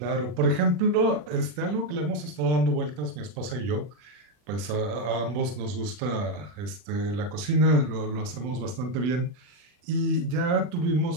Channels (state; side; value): late; left; 40 ms